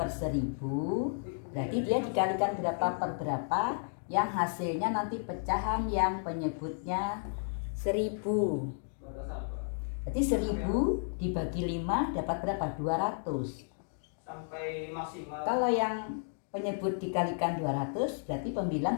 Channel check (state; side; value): silent; right; digital silence